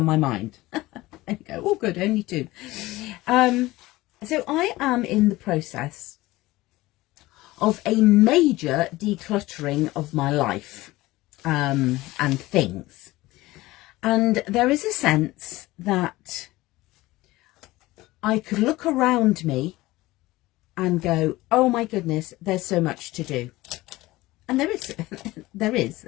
my mind. There you go. Oh, good, only two. So I am in the process of a major decluttering of my life and things. And there is a sense that I could look around me and go, oh my goodness, there's so much to do. And there is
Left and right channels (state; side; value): quieter; right; 18.8 dB